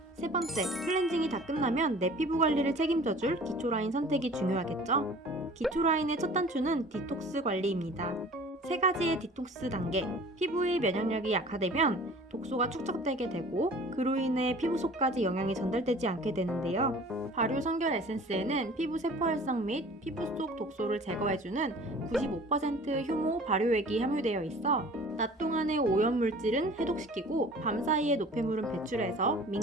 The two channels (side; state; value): both; normal; correlation 0.46